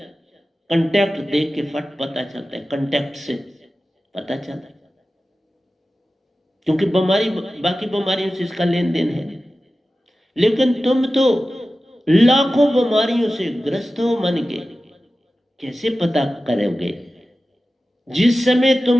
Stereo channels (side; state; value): both; normal; correlation 0.95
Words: कंटेक्ट देख के फट पता चलता है, कंटेक्ट से पता चलता है। क्योंकि बीमारी बाकी बीमारियों से इसका लेन देन है, लेकिन तुम तो लाखों बीमारियों से ग्रस्त हो मन के, कैसे पता करोगे? जिस समय